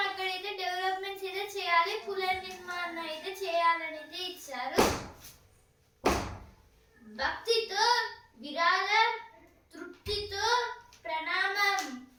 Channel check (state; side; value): identical; both; correlation 1.00